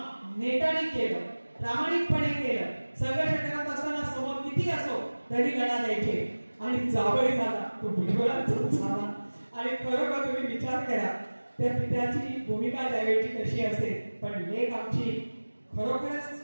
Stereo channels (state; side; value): inverted; both; correlation -1.00